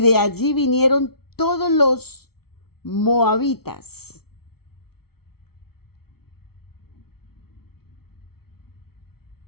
de allí vinieron todos los moabitas.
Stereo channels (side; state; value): right; late; 0.95 ms